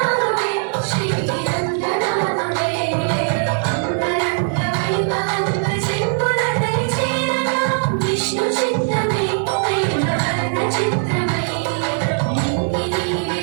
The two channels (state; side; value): silent; left; 57 dB below the other